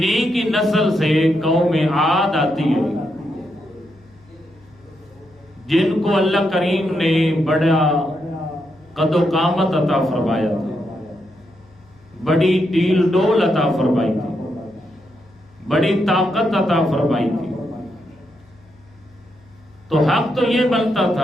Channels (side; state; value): left; noise; hum, 29 dB below the sound